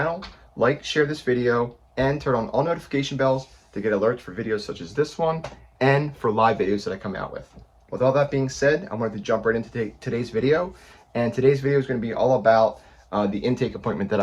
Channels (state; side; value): identical; both; correlation 1.00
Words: like, share this video, and turn on all notification bells to get alerts for videos such as this one and for live videos that I come out with. With all that being said, I wanted to jump right into today's video, and today's video is going to be all about the intake appointment that